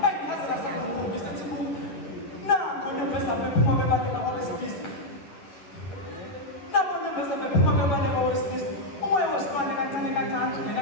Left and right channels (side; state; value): right; late; 10 ms